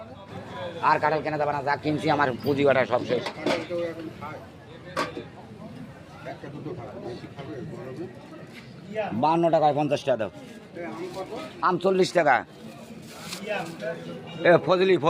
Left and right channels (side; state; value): both; identical; correlation 1.00